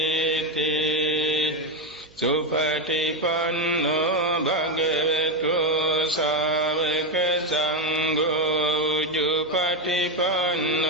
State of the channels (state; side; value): noise; right; hum, 27 dB below the sound